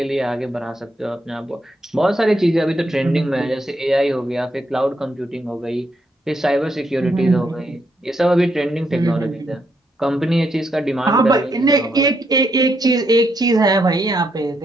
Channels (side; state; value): both; normal; correlation 0.78